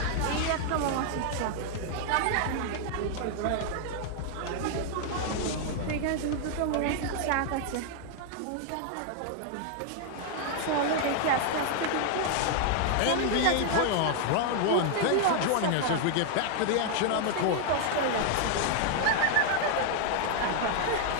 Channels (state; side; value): different; both; correlation 0.00